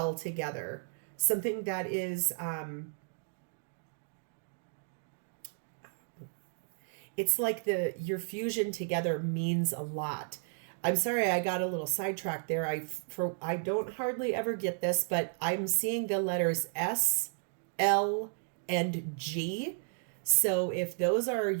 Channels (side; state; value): left; silent; digital silence